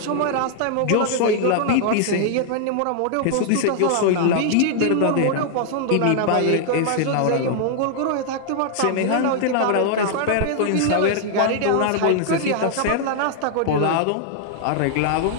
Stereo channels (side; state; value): both; different; correlation -0.01